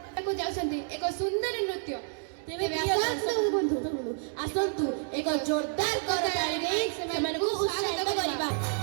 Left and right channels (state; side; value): silent; left; digital silence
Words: ଯାଉଛନ୍ତି ଏକ ସୁନ୍ଦର ନୃତ୍ୟ। ତେବେ ଆସନ୍ତୁ ଏକ ଜୋରଦାର କରତାଳି